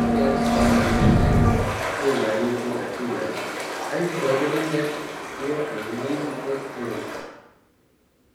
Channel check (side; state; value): both; identical; correlation 1.00